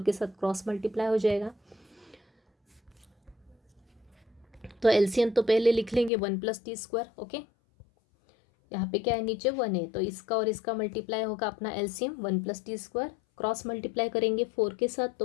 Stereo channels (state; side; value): drops out; right; at 6.1 s